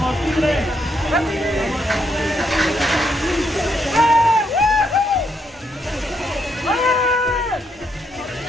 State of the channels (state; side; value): normal; both; correlation 0.76